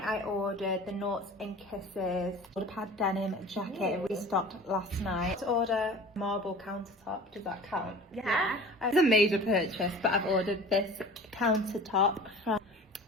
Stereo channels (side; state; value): both; normal; correlation 0.40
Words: I ordered the Noughts and Kisses Waterpad denim jacket. It restocked last night. To order marble countertop, does that count? Yeah. It's a major purchase, but I've ordered this countertop from